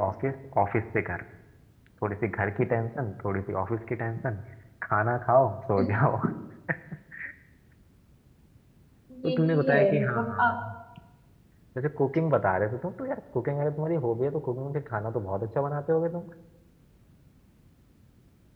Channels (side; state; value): both; identical; correlation 1.00